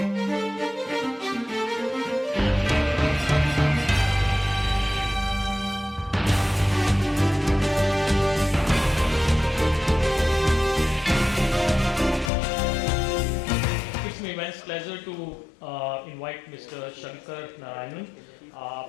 my immense pleasure to invite Mr. Shankar Narayanan.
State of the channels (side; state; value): right; drops out; at 12.3 s